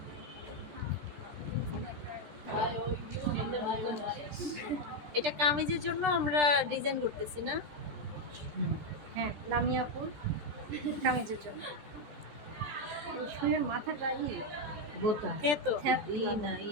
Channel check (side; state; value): left; late; 13 ms